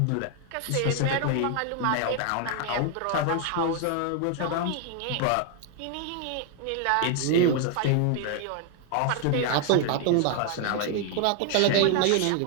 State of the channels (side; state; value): both; different; correlation 0.00